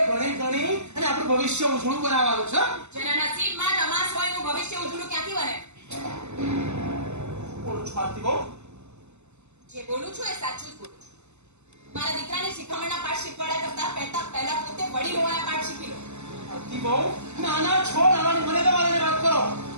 ભણી ગણી અને આપણું ભવિષ્ય ઉજળું બનાવવાનું છે. જેના નસીબમાં તમાસ હોય એનું ભવિષ્ય ઉજળું ક્યાંથી બને? બોલું છું આરતી બહુ. જે બોલું છું એ સાચું જ બોલું છું. મારા દીકરાને શિખામણના પાઠ શીખવાડ્યા કરતા પહેલા પોતે વડીલ હોવાના પાઠ શીખી લો. આરતી બહુ નાના છો નાનાની મને તમારે વાત કરો.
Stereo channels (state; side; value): late; left; 0.82 ms